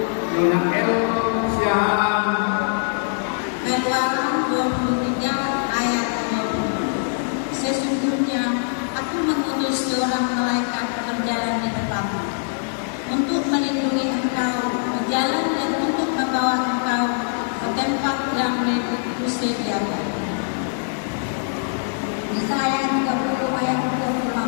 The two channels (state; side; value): silent; right; digital silence